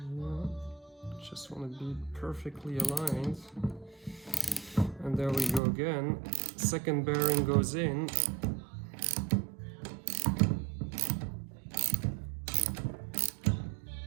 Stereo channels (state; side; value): drops out; left; at 5.6 s